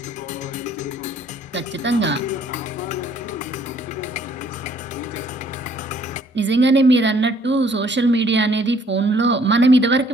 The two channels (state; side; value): normal; both; correlation 0.62